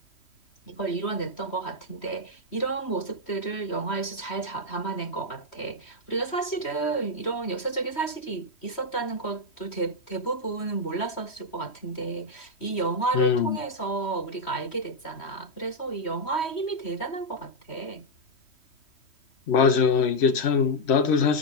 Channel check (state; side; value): late; right; 3.1 ms